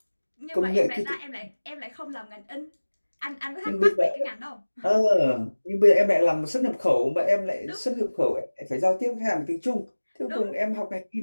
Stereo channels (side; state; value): both; inverted; correlation -1.00